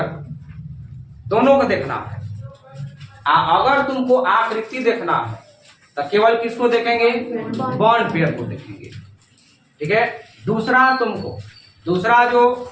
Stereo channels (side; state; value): both; identical; correlation 1.00